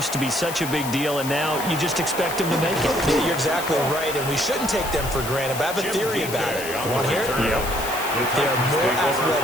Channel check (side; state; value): left; noise; hiss, 9 dB below the sound